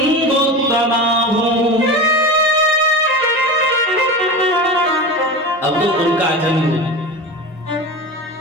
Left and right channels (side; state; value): both; normal; correlation 0.27